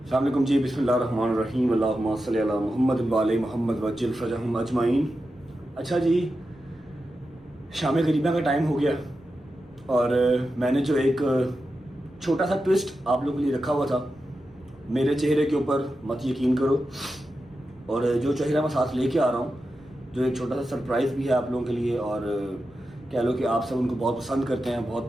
علیکم جی, بسم اللہ الرحمن الرحیم, اللہم صلی علی محمد وعلی محمد وعجل فرجہم اجمعین. اچھا جی, شام غریبہ کا ٹائم ہو گیا, اور میں نے جو ایک چھوٹا سا ٹوسٹ آپ لوگوں کے لیے رکھا ہوا تھا, میرے چہرے کے اوپر مت یقین کرو, اور جو چہرہ میں ساتھ لے کے آ رہا ہوں, جو ایک چھوٹا سا سرپرائز بھی ہے آپ لوگوں کے لیے, اور کہہ لو کہ آپ سب ان کو بہت پسند کرتے ہیں, بہت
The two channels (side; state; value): right; noise; rumble, 28 dB below the sound